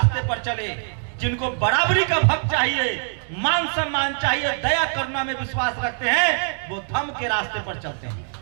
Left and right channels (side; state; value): left; silent; 63 dB below the other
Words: पर चले। जिनको बराबरी का हक चाहिए, मान सम्मान चाहिए, दया करुणा में विश्वास रखते हैं, वो धर्म के रास्ते पर चलते हैं।